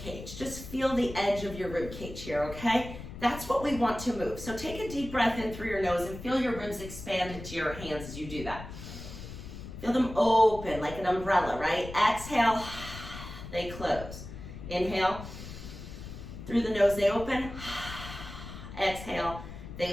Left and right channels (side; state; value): left; noise; rumble, 11 dB below the sound